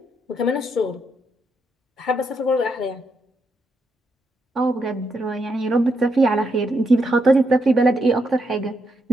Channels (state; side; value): normal; both; correlation 0.79